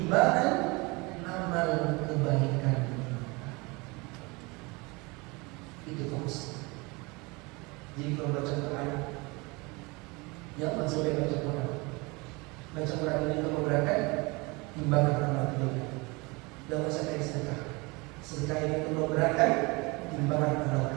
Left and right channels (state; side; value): quieter; left; 26.2 dB